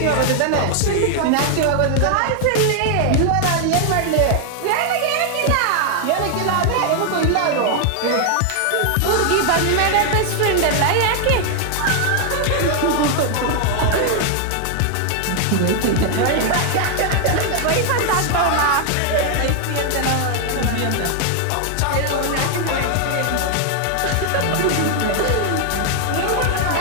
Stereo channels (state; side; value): different; both; correlation 0.00